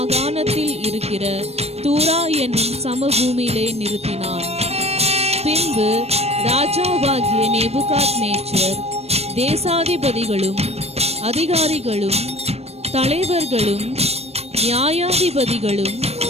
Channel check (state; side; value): late; left; 0.30 ms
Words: இருக்கிற தூரா என்னும் சமபூமியிலே நிறுத்தினான். பின்பு ராஜாவாகிய நேபுகாத்நேச்சர் தேசாதிபதிகளும் அதிகாரிகளும் தலைவர்களும் நியாயாதிபதிகளும்